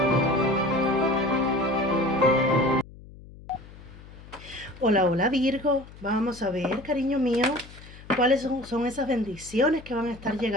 Hola, hola Virgo. Vamos a ver, cariño mío, cuáles son esas bendiciones que van a estar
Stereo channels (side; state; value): left; noise; hum, 19 dB below the sound